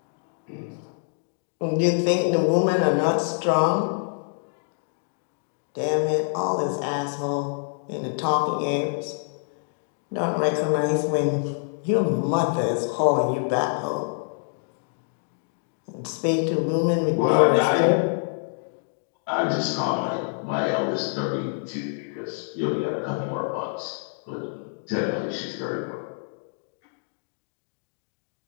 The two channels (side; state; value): right; silent; digital silence